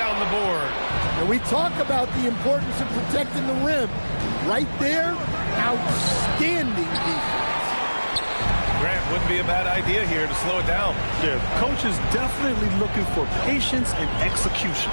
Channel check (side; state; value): both; inverted; correlation -1.00